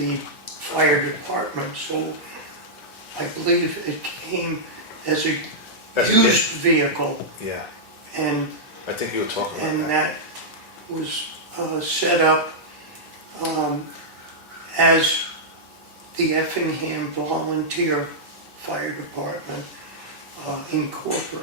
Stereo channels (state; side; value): normal; both; correlation -0.09